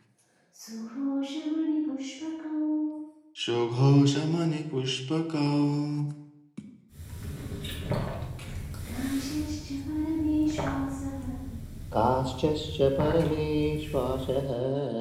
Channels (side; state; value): both; identical; correlation 1.00